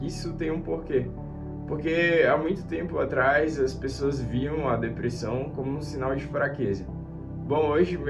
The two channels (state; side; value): identical; both; correlation 1.00